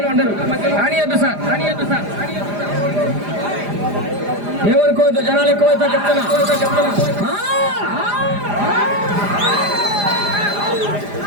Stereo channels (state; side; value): late; left; 4.9 ms